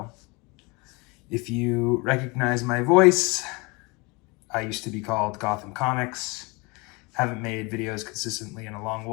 If you recognize my voice, I used to be called Gotham Comics. Haven't made videos consistently in a long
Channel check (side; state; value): right; quieter; 27.3 dB